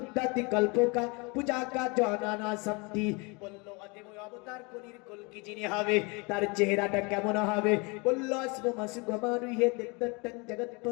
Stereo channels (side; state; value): right; quieter; 29.3 dB